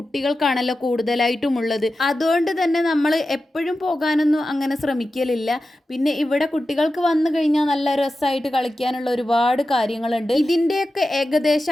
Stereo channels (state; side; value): normal; both; correlation 0.92